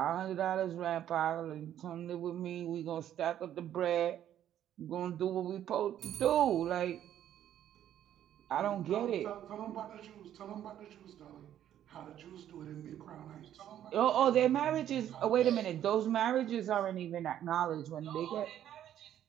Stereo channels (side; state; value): left; quieter; 11.0 dB